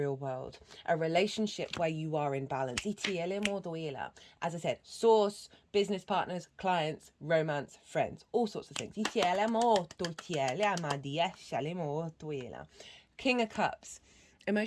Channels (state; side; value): identical; both; correlation 1.00